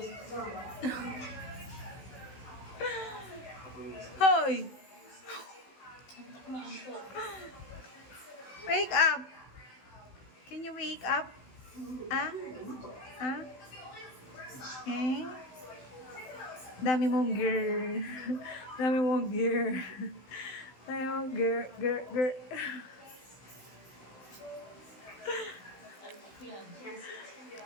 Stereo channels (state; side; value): late; right; 16 ms